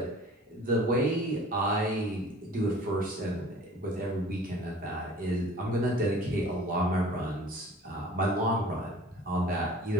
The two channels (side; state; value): both; normal; correlation 0.47